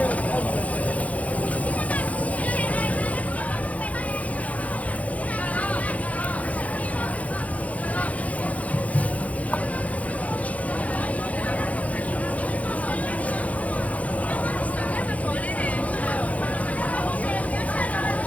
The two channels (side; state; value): right; late; 0.068 ms